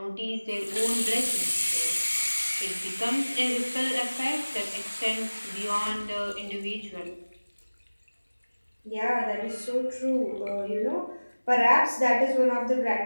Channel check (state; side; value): inverted; both; correlation -1.00